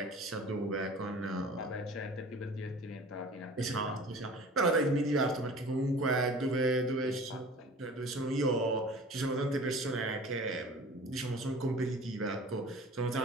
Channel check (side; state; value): both; normal; correlation 0.42